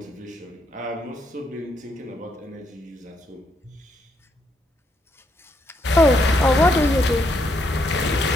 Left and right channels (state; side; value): normal; both; correlation 0.75